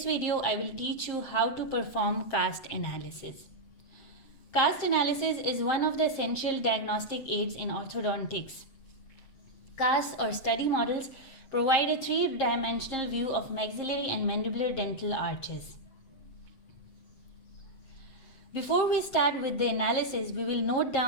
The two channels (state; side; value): late; right; 7.8 ms